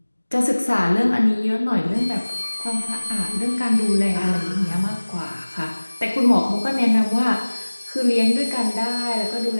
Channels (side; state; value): both; inverted; correlation -1.00